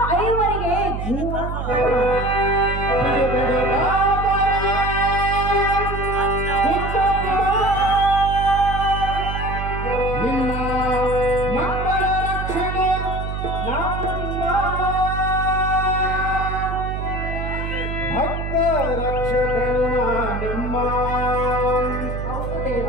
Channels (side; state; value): right; noise; hum, 4 dB below the sound